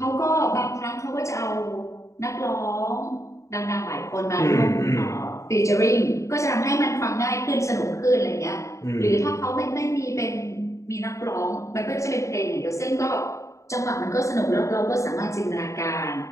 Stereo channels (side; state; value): right; late; 0.15 ms